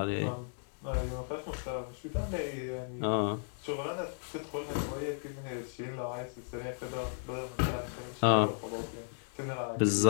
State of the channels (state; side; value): silent; right; digital silence